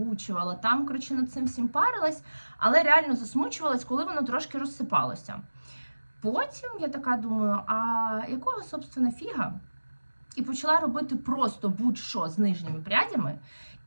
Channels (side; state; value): both; inverted; correlation -1.00